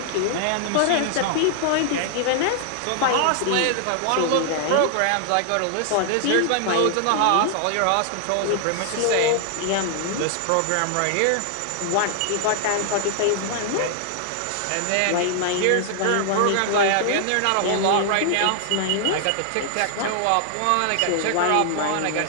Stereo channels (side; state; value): both; different; correlation 0.00